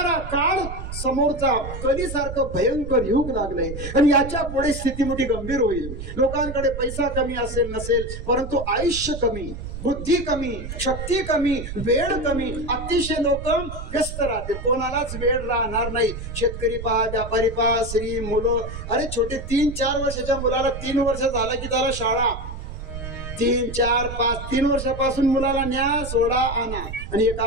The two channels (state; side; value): noise; right; rumble, 8 dB below the sound